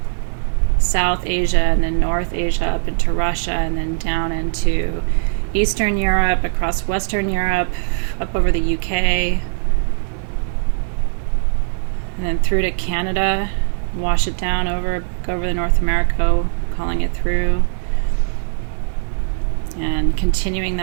South Asia, and then North Asia, up into Russia, and then down into Eastern Europe, across Western Europe, up over the UK, and then through to Canada, wash it down over the North America, calling it through, and continuing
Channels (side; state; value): left; silent; digital silence